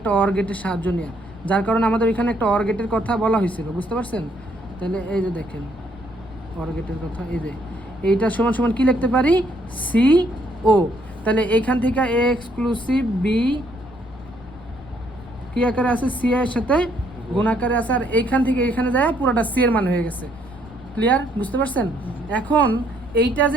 অর গেটের সাহায্য নিয়ে, যার কারণে আমাদের এখানে একটা অর গেটের কথা বলা হয়েছিল, বুঝতে পারছেন? তাহলে এই যে দেখেন, অর গেটের কথা এই যে এইটা সমান সমান কি লিখতে পারি সি ও। তাহলে এইখান থেকে এ এক্সক্লুসিভ বি কি আকারে আছে সি এর সাথে গুণ আকারে আছে, আর এইখান থেকে এখানে যায় পুরোটা সি এর মান হয়ে গেছে। ক্লিয়ার, বুঝতে পারছেন? এখন এইটা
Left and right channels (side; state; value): left; noise; rumble, 19 dB below the sound